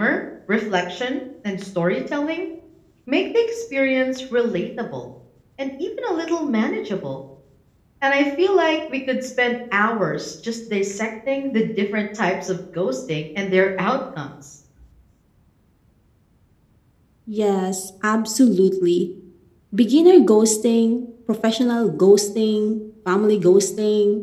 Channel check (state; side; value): identical; both; correlation 1.00